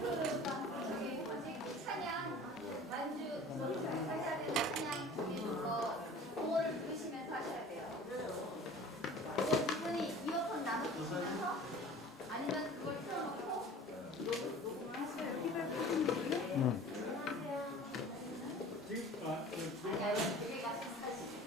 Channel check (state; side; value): normal; both; correlation 0.44